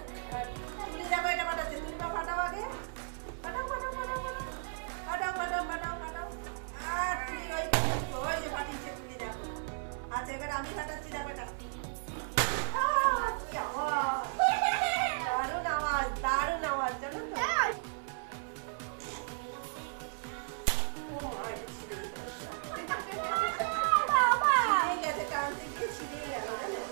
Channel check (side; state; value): left; silent; 55 dB below the other